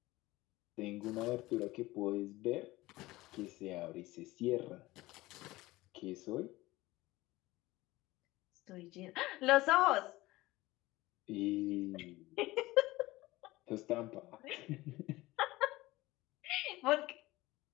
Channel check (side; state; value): right; quieter; 19.0 dB